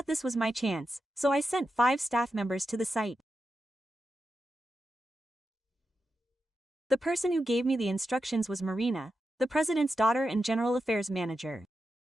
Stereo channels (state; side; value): normal; both; correlation 0.88